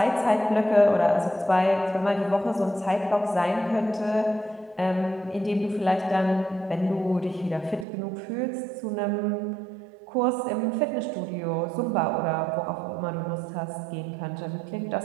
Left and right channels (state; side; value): drops out; left; at 7.9 s